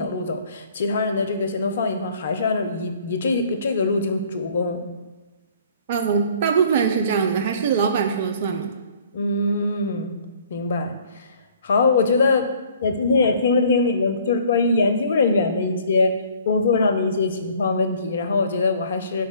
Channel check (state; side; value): inverted; both; correlation -0.55